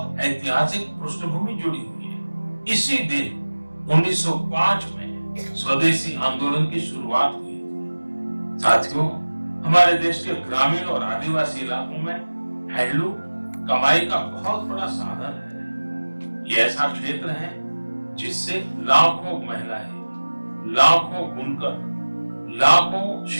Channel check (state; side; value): inverted; both; correlation -1.00